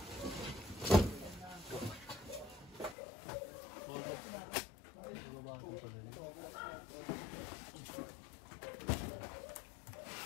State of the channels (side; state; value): right; drops out; at 3.0 s